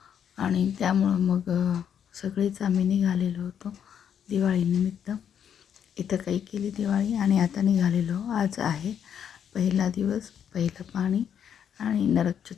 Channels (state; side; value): quieter; right; 8.6 dB